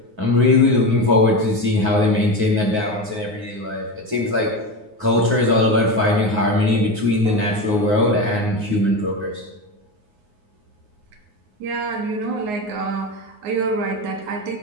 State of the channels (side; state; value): left; late; 9.6 ms